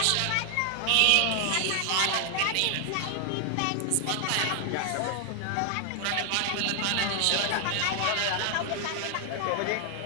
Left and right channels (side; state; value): both; different; correlation 0.00